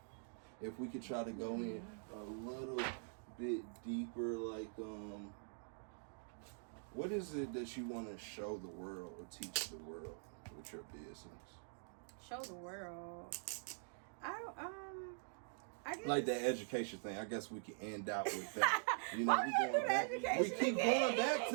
if we could try to go in a little bit deeper, like what is it that you want to show the world or teach the world with your business? Show the world. I guess. Like that education thing. I guess we can end out with that. Why we gotta do the education We keep again? going back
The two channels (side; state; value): left; silent; digital silence